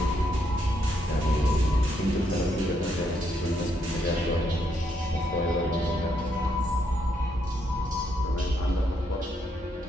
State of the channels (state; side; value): normal; both; correlation 0.76